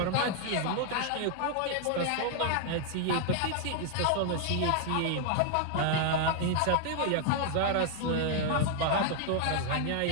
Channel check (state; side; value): different; both; correlation 0.00